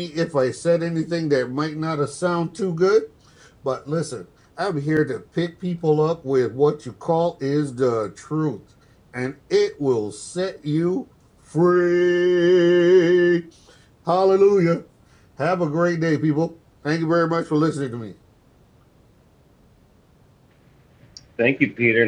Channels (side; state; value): both; identical; correlation 1.00